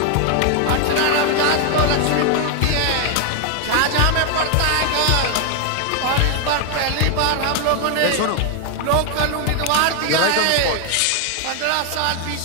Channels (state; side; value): different; both; correlation 0.00